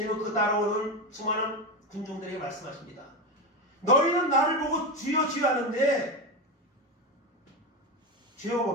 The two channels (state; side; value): normal; both; correlation 0.16